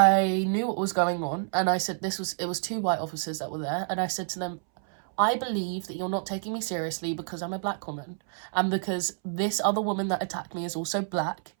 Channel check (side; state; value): left; silent; 59 dB below the other